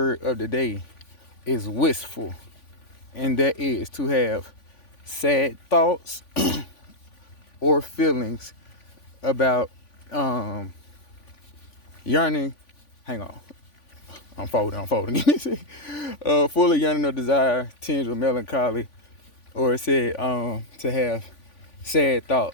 of the day is wistful, and that is to have sad thoughts or feelings about yearning. Hang on. I'm folding. Full of yearning or desire, tinged with melancholy, or it said to have sad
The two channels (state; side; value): late; right; 3.5 ms